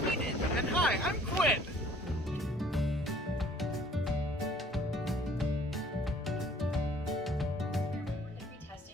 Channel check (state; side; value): normal; both; correlation 0.57